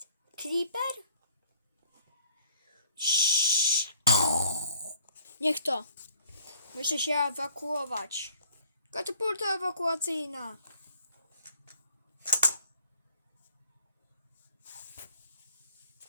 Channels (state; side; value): inverted; both; correlation -0.57